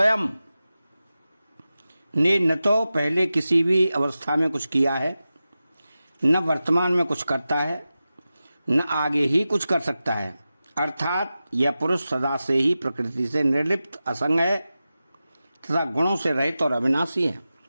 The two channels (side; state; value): both; inverted; correlation -0.94